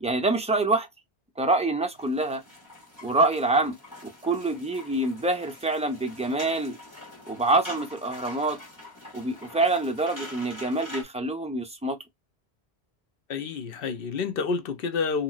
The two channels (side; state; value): both; normal; correlation 0.16